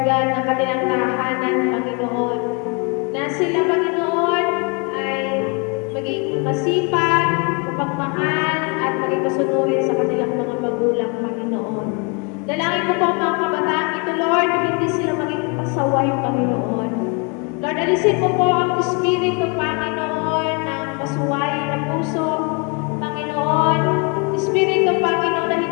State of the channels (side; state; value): right; quieter; 33.0 dB